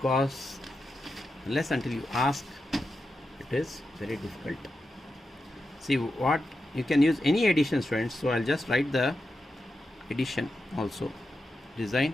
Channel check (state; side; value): normal; both; correlation 0.89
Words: unless until you ask, it is very difficult. See what you can use any addition, students. So I'll just write the addition also. Design